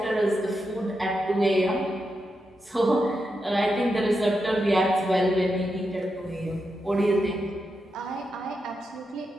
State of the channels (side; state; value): both; normal; correlation 0.86